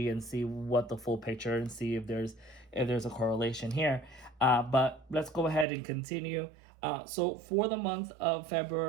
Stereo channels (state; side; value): drops out; left; at 5.7 s